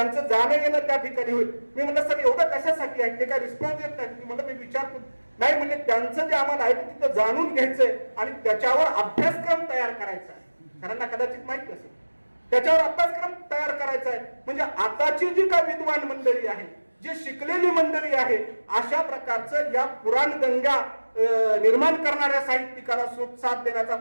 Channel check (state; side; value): inverted; both; correlation -1.00